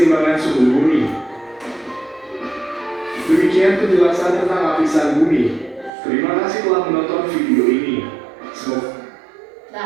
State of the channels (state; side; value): drops out; left; at 5.9 s